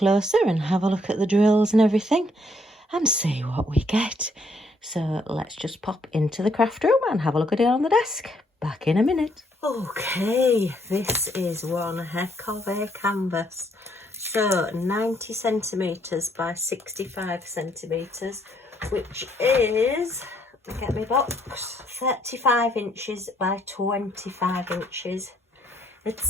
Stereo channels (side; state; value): both; normal; correlation 0.69